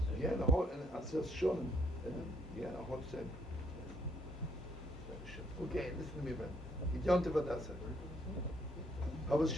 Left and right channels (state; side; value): normal; both; correlation 0.69